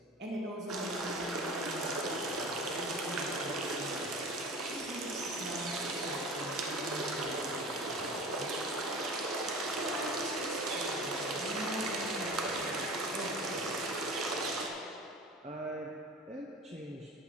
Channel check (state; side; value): normal; both; correlation 0.37